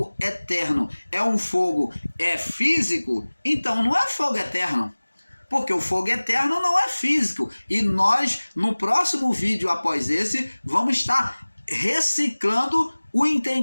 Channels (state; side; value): inverted; both; correlation -1.00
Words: eterno é um fogo físico, então não é fogo eterno. Porque o fogo eterno não é físico. E nós, no próximo vídeo após esse, vamos estar reciclando o